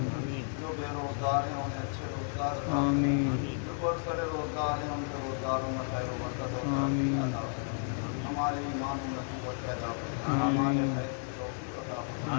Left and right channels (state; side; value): silent; right; 56 dB below the other